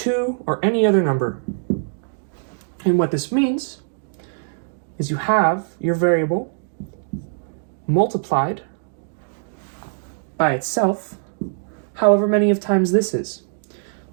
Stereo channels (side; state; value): left; silent; digital silence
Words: or any other number. And what this means is you have your variable multiplied by itself however many of times this is.